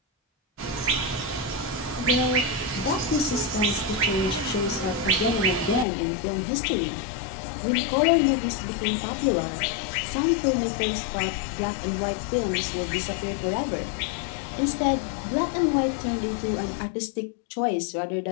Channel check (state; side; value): drops out; right; at 5.9 s